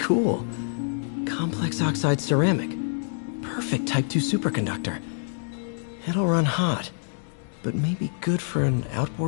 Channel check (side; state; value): right; silent; digital silence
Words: Complex oxide ceramic. Perfect Type 2 superconductor. It'll run hot, but maybe good for an